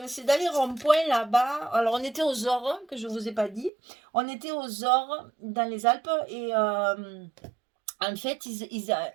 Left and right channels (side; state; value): left; drops out; at 3.7 s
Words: les ronds-points là-bas. Alors on était aux Ores, que je ne vous ai pas dit. On était aux Ores dans les Alpes et en fait,